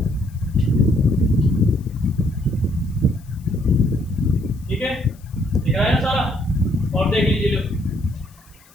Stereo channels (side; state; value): left; noise; hiss, 29 dB below the sound